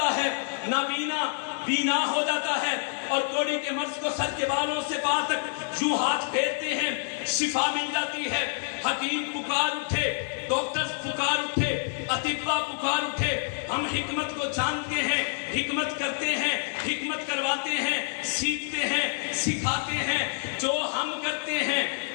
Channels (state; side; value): silent; right; 60 dB below the other